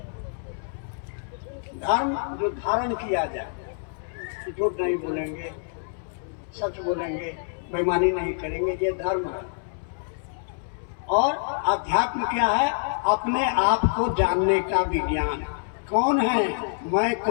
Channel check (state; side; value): silent; right; 61 dB below the other